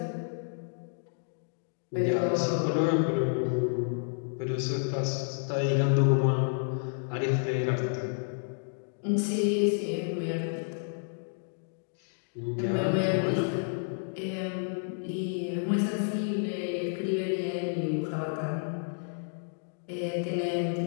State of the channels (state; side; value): silent; right; digital silence